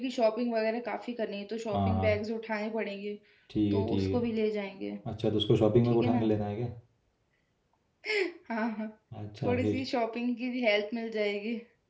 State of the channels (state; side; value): identical; both; correlation 1.00